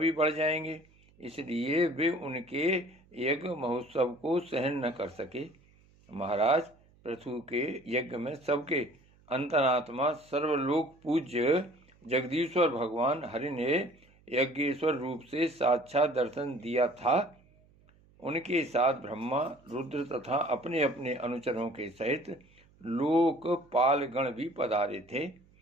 बढ़ जाएंगे, इसलिए वे उनके यज्ञ महोत्सव को सहन न कर सके। महाराज पृथु के यज्ञ में सबके अंतरात्मा सर्वलोक पूज्य जगदीश्वर भगवान हरि ने यज्ञेश्वर रूप से साक्षात दर्शन दिया था। उनके साथ ब्रह्मा, रुद्र तथा अपने अपने अनुचरों के सहित लोकपाल गण भी पधारे थे।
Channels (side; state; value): right; noise; hum, 30 dB below the sound